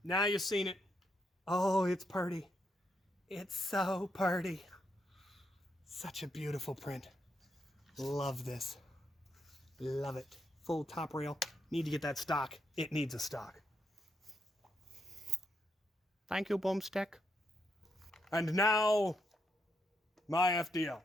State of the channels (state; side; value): normal; both; correlation 0.78